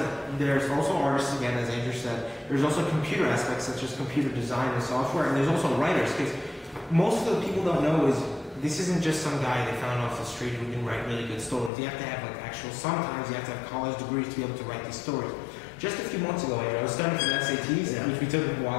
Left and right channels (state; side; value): drops out; right; at 11.7 s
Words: there's also artists, again, as Andrew said, there's also computer aspects such as computer design and software, and there's also writers, because most of the people don't know is this isn't just some guy they found off the street who can write really good stories. You have to have like actual, sometimes you have to have college degrees to be able to write these stories. Just a few months ago, Andrew, I was studying for the SATs, which we took a